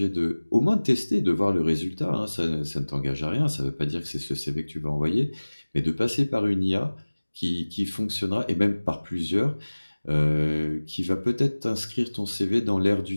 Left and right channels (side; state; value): both; inverted; correlation -1.00